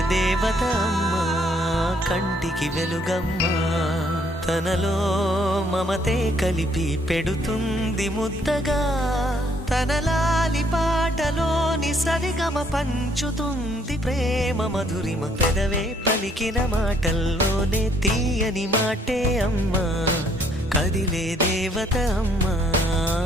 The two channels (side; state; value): both; normal; correlation 0.66